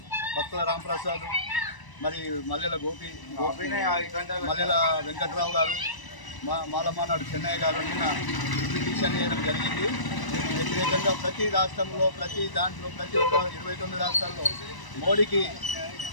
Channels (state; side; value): late; right; 1.0 ms